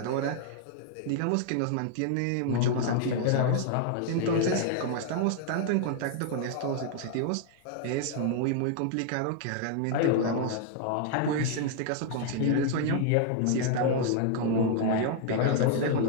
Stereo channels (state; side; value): different; both; correlation 0.00